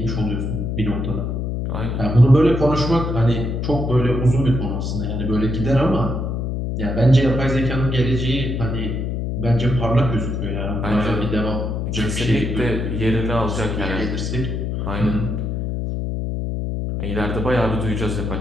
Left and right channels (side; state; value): left; noise; hum, 2 dB below the sound